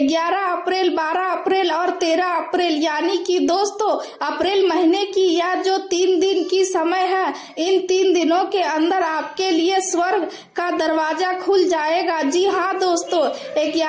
अप्रैल, 12 अप्रैल और 13 अप्रैल यानी कि दोस्तों अप्रैल महीने की यह जो 3 दिन की समय है, इन 3 दिनों के अंदर आपके लिए स्वर्ग का दरवाजा खुल जाएगा। जी हाँ दोस्तों,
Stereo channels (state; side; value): identical; both; correlation 1.00